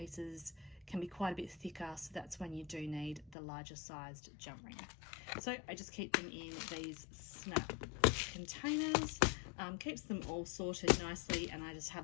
can be quite a bit thicker, so that's when you do need the larger sized jump ring. So I just keep them in these snap containers, keeps them all sorted nicely, and I just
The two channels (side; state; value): right; drops out; at 3.4 s